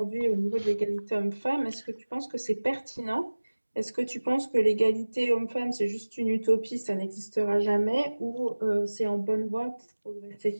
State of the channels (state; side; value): inverted; both; correlation -1.00